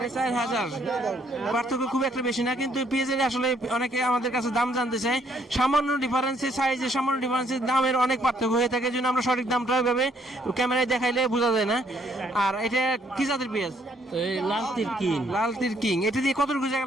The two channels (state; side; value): normal; both; correlation 0.67